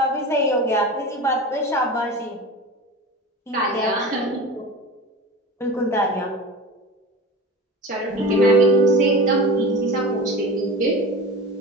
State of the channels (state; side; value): normal; both; correlation 0.32